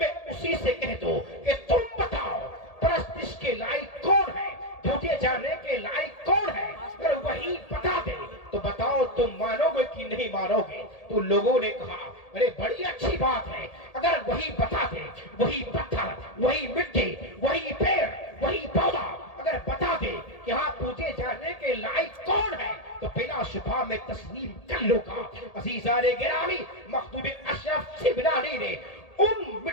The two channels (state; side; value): late; right; 1.8 ms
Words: اسی سے کہہ دوں کہ تم بتاؤ پرستش کے لائق کون ہے, پوجے جانے کے لائق کون ہے, اگر وہی بتا دے تو بتاؤ تم مانو گے کہ نہیں مانو گے؟ تو لوگوں نے کہا ارے بڑی اچھی بات ہے, اگر وہی بتا دے, وہی پتھر, وہی مٹی, وہی پیڑ, وہی پودا اگر بتا دے کہ ہاں پوجے جانے کے لائق کون ہے تو بلا شبہ میں تسلیم کر لوں گا. عزیزان گرامی, مخدوم اشرف سمنانی نے ان